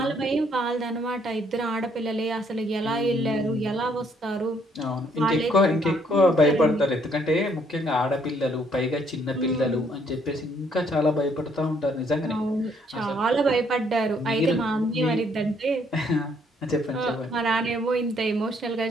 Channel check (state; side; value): normal; both; correlation 0.67